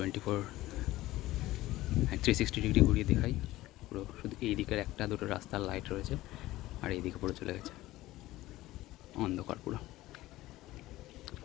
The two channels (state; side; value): quieter; right; 16.9 dB